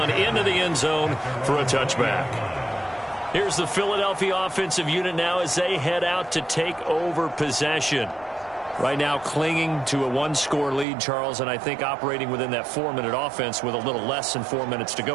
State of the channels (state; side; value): drops out; left; at 10.9 s